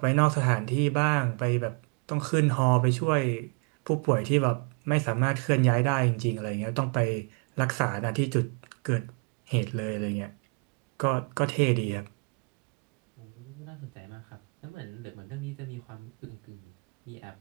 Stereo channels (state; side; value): quieter; left; 36.6 dB